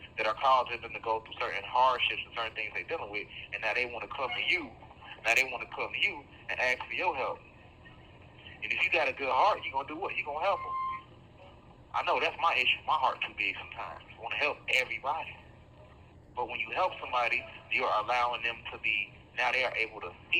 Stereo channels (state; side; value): identical; both; correlation 1.00